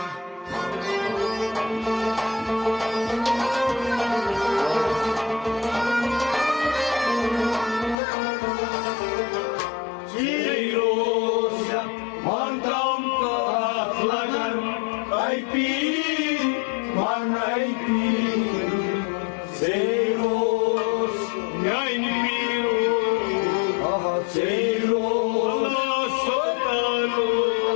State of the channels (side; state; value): right; drops out; at 8.0 s